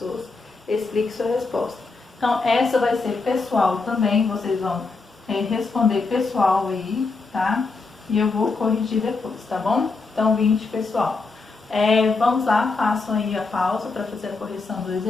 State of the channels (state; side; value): quieter; right; 4.0 dB